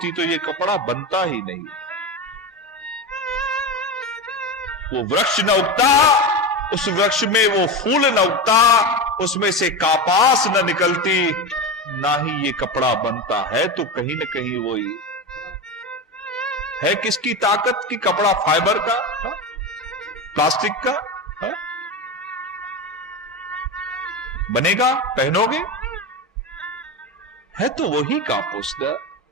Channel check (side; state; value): both; normal; correlation 0.20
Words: तो ये कपड़ा बनता ही नहीं। वो वृक्ष न उगता, उस वृक्ष में वो फूल न उगता, उसमें से कापास न निकलती, ना ही ये कपड़ा बनता है। तो कहीं न कहीं वही है। किसकी ताकत की? कपड़ा फाइबर का, प्लास्टिक का बनेगा, पहनोगे, है तो वही कापुस।